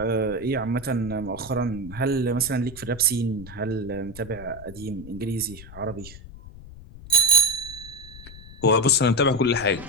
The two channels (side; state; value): left; noise; rumble, 16 dB below the sound